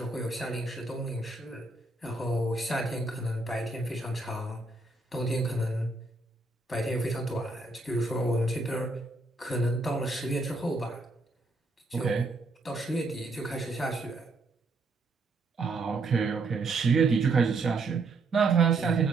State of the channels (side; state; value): left; quieter; 3.3 dB